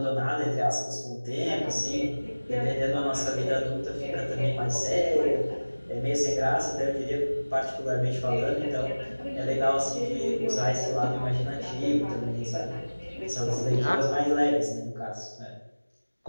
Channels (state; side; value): inverted; both; correlation -1.00